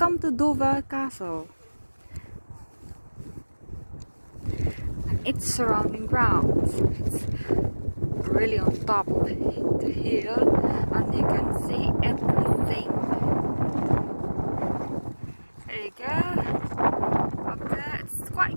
to Dover Castle and its surrounding grounds. It's really on top of the hill and you can see everything. There you go. Up there, it's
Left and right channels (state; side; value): inverted; both; correlation -1.00